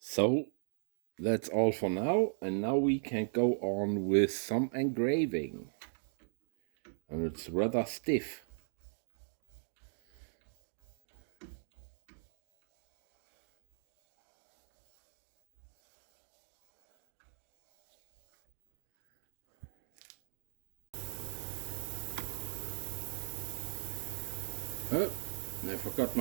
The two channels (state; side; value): silent; left; digital silence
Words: So that's all for now, and now we can go on with some engraving. And it's rather stiff. Oh, I forgot